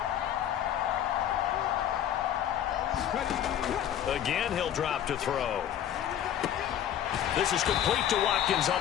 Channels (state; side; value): quieter; right; 10.4 dB